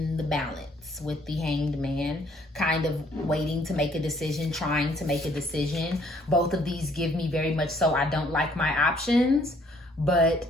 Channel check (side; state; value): both; normal; correlation 0.63